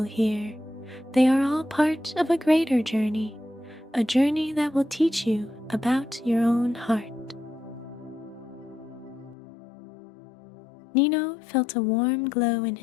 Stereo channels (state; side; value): drops out; right; at 9.3 s